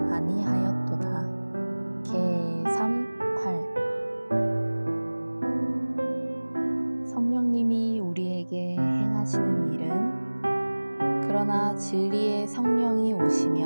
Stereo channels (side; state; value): both; inverted; correlation -1.00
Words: 아니하였도다. 개 3:8. 성령님이 우리에게 행하시는 일은 그러나 진리의 성령이